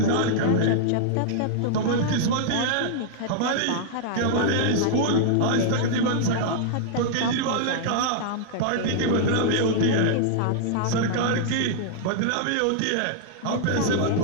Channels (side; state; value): both; different; correlation -0.01